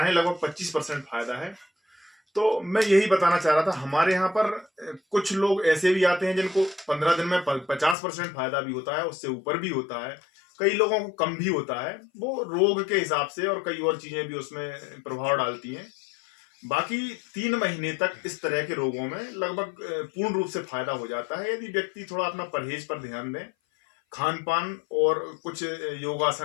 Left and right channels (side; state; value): right; drops out; at 8.0 s